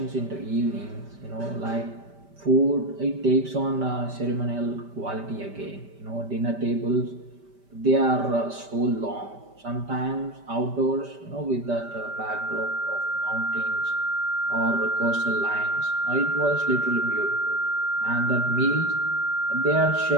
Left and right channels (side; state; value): left; late; 5.1 ms